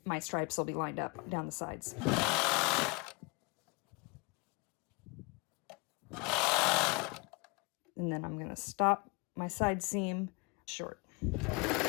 my stripes will be lined up down the sides. And then I'm going to stop my side seam short.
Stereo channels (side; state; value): right; quieter; 28.9 dB